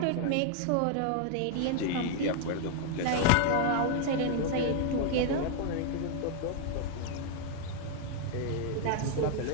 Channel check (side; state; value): both; different; correlation 0.00